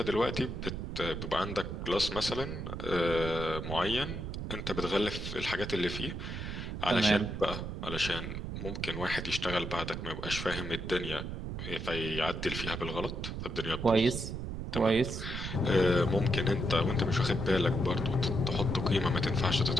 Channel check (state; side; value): noise; right; rumble, 5 dB below the sound